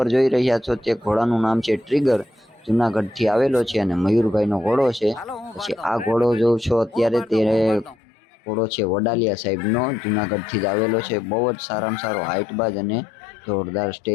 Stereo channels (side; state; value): right; drops out; at 8.0 s